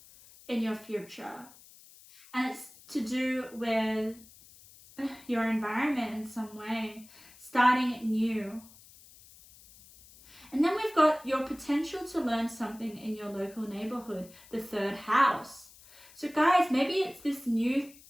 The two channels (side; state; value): left; noise; hiss, 23 dB below the sound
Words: in your future. And it's to do with your environment in some way, starting new. And then we've got your potential to learn something in your local neighborhood, the third house. So guys, maybe it's this new,